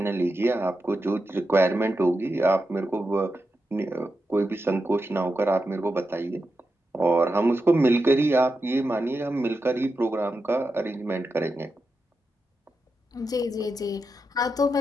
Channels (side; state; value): both; normal; correlation 0.88